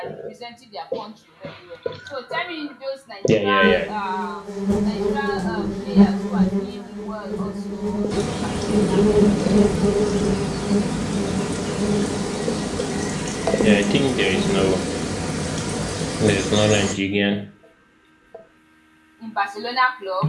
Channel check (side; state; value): both; identical; correlation 1.00